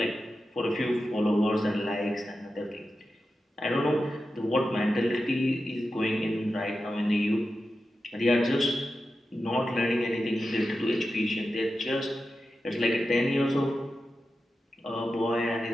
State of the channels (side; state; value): both; normal; correlation 0.91